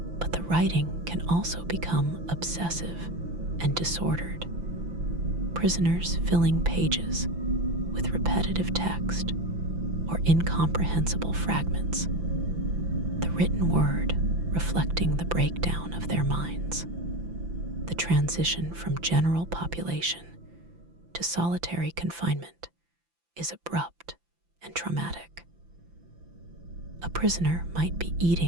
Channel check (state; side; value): late; left; 5.9 ms